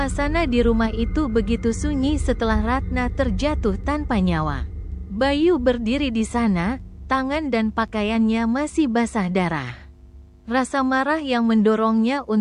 di rumah itu begitu sunyi setelah Ratna terjatuh tanpa nyawa. Bayu berdiri di sana, tangan dan pakaiannya masih basah darah. Rasa marah yang mendorongnya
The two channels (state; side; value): identical; both; correlation 1.00